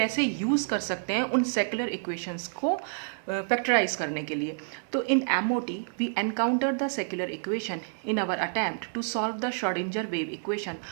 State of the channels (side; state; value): left; silent; 59 dB below the other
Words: यूज़ कर सकते हैं उन सेक्युलर इक्वेशंस को फैक्टराइज करने के लिए। तो in MOT we encounter the secular equation in our attempt to solve the Schrodinger wave equation